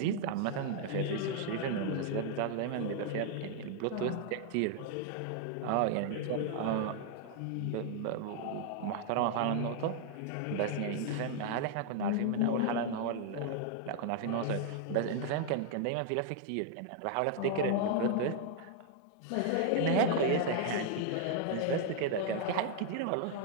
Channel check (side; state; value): both; different; correlation 0.00